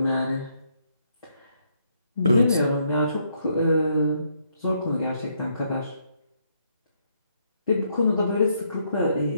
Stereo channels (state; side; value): inverted; both; correlation -0.74